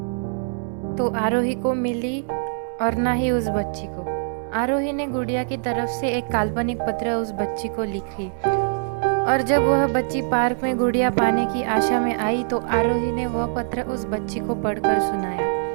तो आरोही को मिली और ना ही उस बच्ची को। आरोही ने गुड़िया की तरफ से एक काल्पनिक पत्र उस बच्ची को लिखी, और जब वह बच्ची पार्क में गुड़िया पाने की आशा में आई तो आरोही ने वह पत्र उस बच्ची को पढ़कर सुनाया।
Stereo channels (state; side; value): silent; left; 63 dB below the other